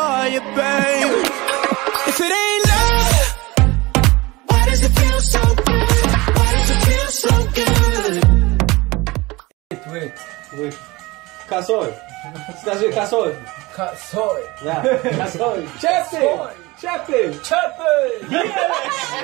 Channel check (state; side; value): quieter; left; 22.1 dB